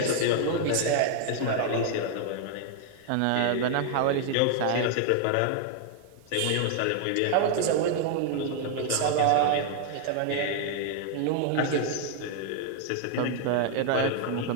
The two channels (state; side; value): different; both; correlation 0.00